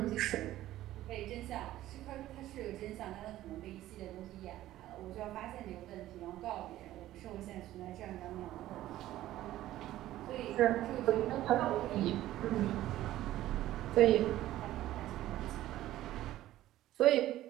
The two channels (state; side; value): quieter; left; 14.4 dB